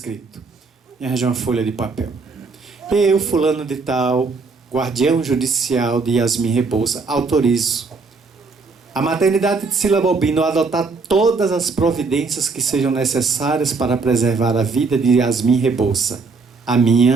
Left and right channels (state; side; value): quieter; left; 4.3 dB